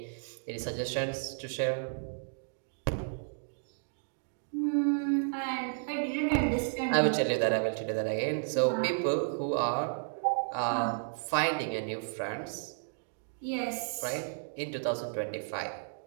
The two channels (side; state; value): left; silent; digital silence